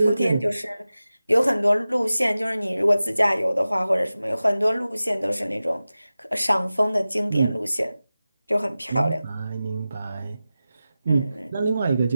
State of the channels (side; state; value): both; inverted; correlation -0.95